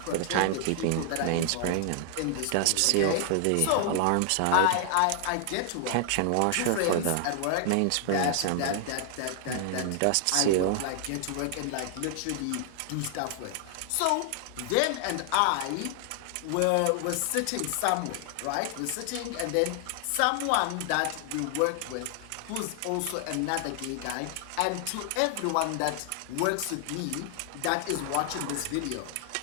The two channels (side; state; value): both; different; correlation 0.00